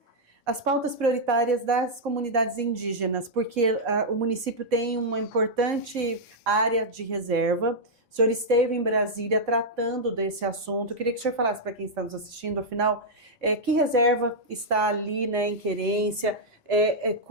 as pautas prioritárias das comunidades indígenas, porque o município tem uma importante área de reserva. O senhor esteve em Brasília tratando desse assunto. Eu queria que o senhor falasse para quem está nos assistindo, afinal, que reserva está ali, né, em Querência,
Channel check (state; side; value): normal; both; correlation -0.05